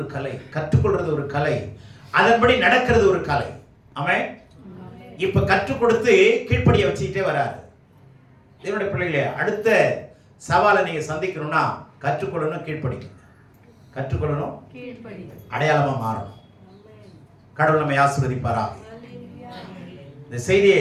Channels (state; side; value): identical; both; correlation 1.00